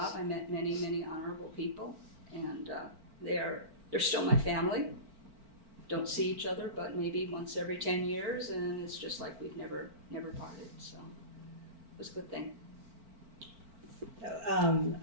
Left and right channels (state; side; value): late; left; 4.5 ms